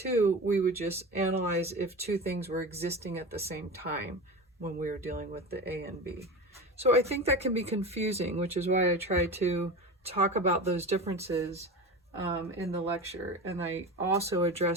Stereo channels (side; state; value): both; normal; correlation 0.28